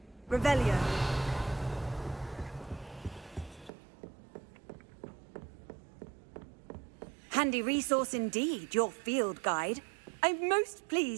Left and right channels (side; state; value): left; drops out; at 3.7 s